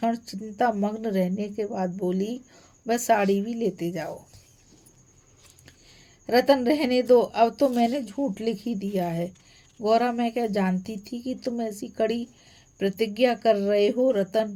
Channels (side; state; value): both; identical; correlation 1.00